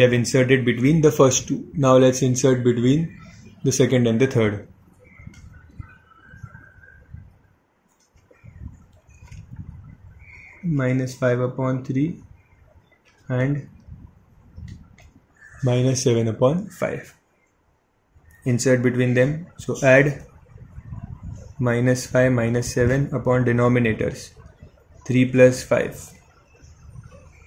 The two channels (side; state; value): both; identical; correlation 1.00